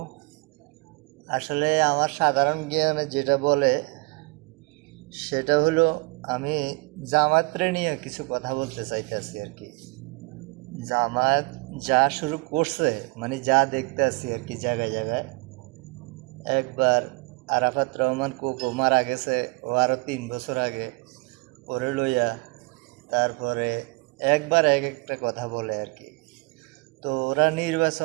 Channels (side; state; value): left; quieter; 27.8 dB